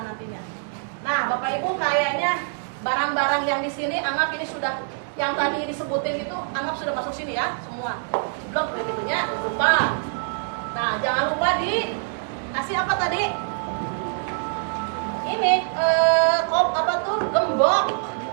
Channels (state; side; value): silent; left; digital silence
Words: nantinya. Nah Bapak Ibu kayaknya barang-barang yang di sini anggap ini sudah yang tadi disebutin itu anggap sudah masuk sini ya semua blok begitunya lupa jangan lupa kasih apa tadi? Ini gembok.